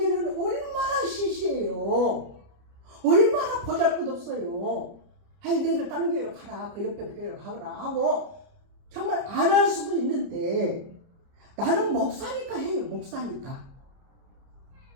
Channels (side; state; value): left; late; 30 ms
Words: 얼마나 시시해요. 얼마나 보잘것없어요. 아이 너희들 다른 교회로 가라. 그 옆에 교회로 가거라 하고 정말 안 할 수도 있는데 나는 목사니까 해요. 목사니까.